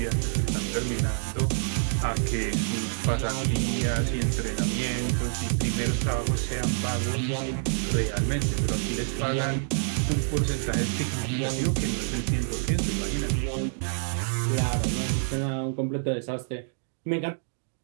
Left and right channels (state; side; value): silent; left; digital silence